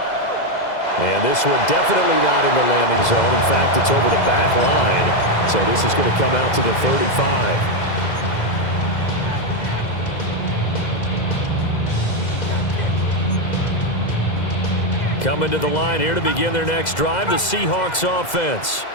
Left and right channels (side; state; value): right; late; 2.0 ms